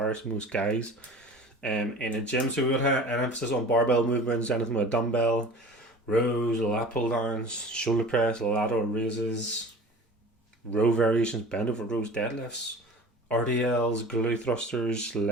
most guys in a gym. So we would have an emphasis on barbell movements, anything with a dumbbell, rows, lat pull downs, shoulder press, lateral raises, row variations, bend over rows, deadlifts, RDLs, glute thrusters,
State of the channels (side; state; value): both; normal; correlation 0.40